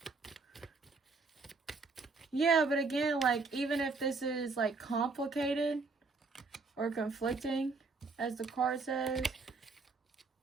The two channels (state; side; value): quieter; left; 4.1 dB